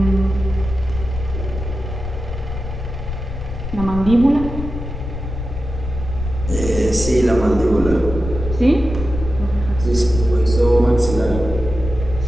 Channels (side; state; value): left; noise; rumble, 7 dB below the sound